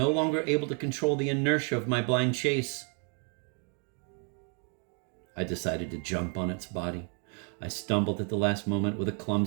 longer able to control the inertia of my blind chase, I decided to jump on its body. I stumbled at the last moment with a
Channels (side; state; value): left; quieter; 39.7 dB